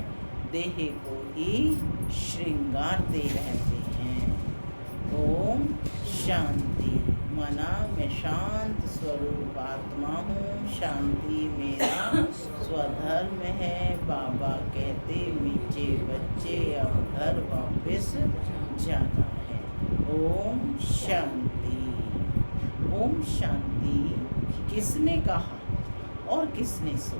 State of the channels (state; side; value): inverted; both; correlation -1.00